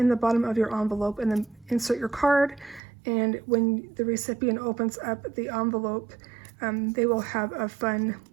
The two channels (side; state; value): left; drops out; at 2.8 s